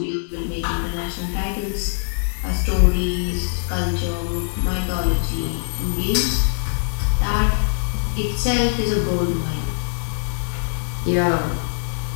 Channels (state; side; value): silent; right; digital silence